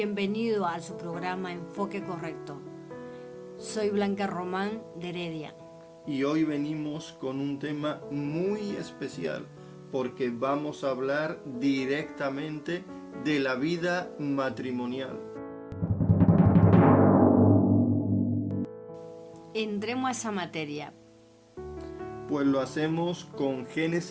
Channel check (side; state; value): both; identical; correlation 1.00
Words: a su programa Enfoque Correcto. Soy Blanca Román de Heredia. Y hoy venimos con un tema muy especial porque vamos a hablar directamente de la vida matrimonial. Entremos a esa materia. Pues lo hacemos con